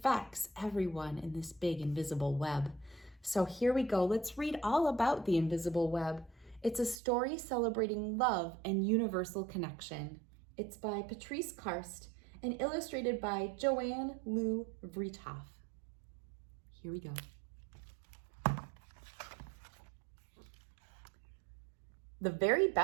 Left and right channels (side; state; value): left; drops out; at 7.0 s